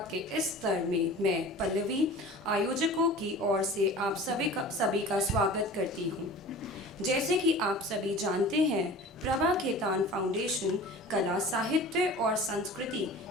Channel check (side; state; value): both; normal; correlation 0.40